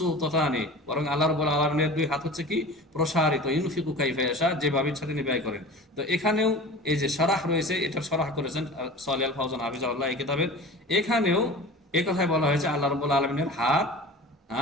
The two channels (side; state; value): both; normal; correlation 0.37